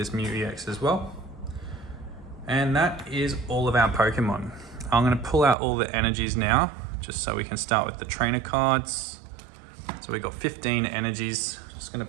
Mew EX as well. And that is all of our Pokemon. I'm going to pull out all the energies now, just so we can start with the trainer cards. So we got 15 energies. Just going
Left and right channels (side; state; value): left; drops out; at 5.6 s